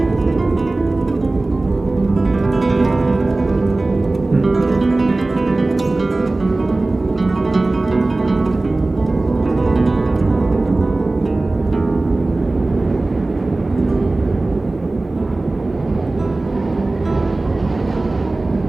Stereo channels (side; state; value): left; quieter; 3.0 dB